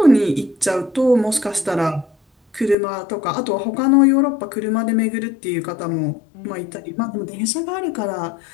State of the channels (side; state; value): right; drops out; at 2.8 s